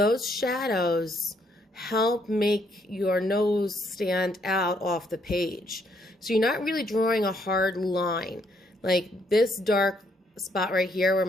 shadows help make your nose stand out off the page. So you're not really drawing a hard line. Like this dark spot right here where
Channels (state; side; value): normal; both; correlation 0.71